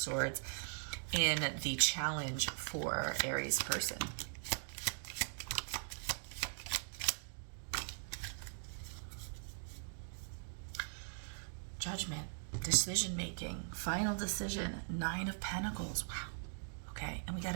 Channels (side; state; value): left; silent; digital silence